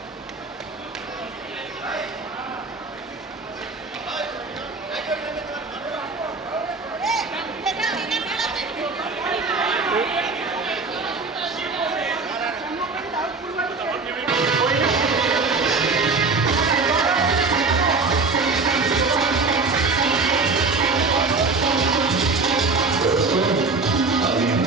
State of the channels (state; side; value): quieter; left; 4.0 dB